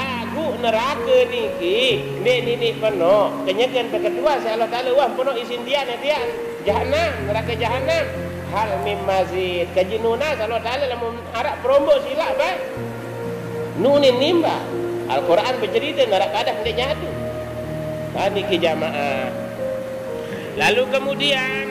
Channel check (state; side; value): identical; both; correlation 1.00